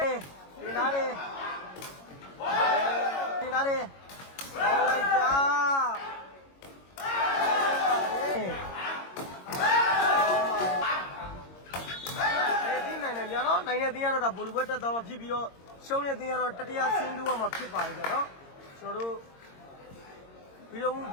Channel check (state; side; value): late; right; 22 ms